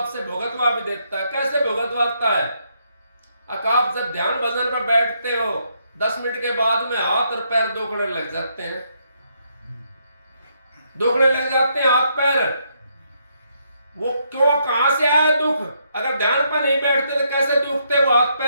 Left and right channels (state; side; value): inverted; both; correlation -0.75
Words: भुगतवा भी देता है। कैसे भुगतवाता है? आप जब ध्यान भजन पर बैठते हो, 10 मिनट के बाद में हाथ और पैर दुखने लग जाते हैं, दुखने लग जाते हैं हाथ पैर। वो क्यों, कहां से आया दुख? अगर ध्यान पर नहीं बैठते तो कैसे दुखते वो हाथ